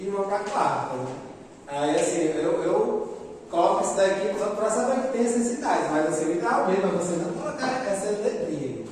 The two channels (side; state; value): both; identical; correlation 1.00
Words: 1 para a quarta. Aí assim, eu coloco isso daqui só para saber que tem essas cidades, mas assim, o ideal mesmo é você não colocar essa letrinha,